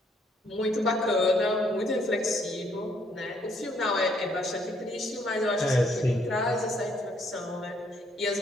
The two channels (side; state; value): both; normal; correlation 0.68